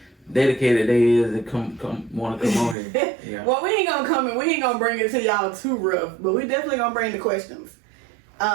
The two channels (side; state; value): left; drops out; at 2.8 s